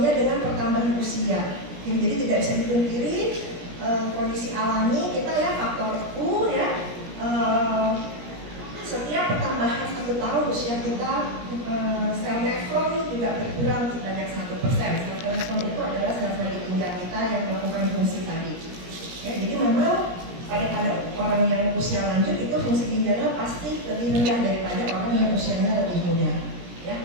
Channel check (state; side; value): late; left; 17 ms